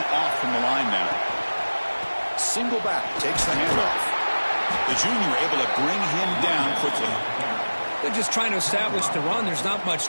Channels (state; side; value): inverted; both; correlation -1.00